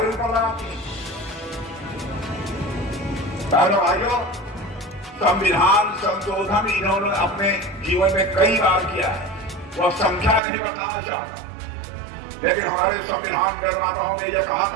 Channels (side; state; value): left; drops out; at 10.4 s